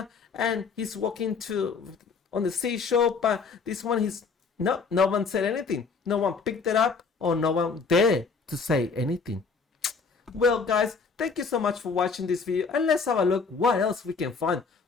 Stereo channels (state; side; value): quieter; right; 5.0 dB